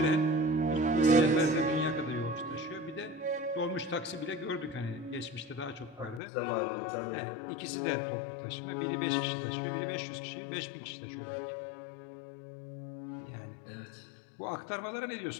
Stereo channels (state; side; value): drops out; right; at 6.2 s